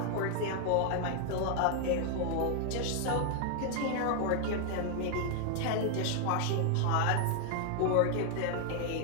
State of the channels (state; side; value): different; both; correlation 0.00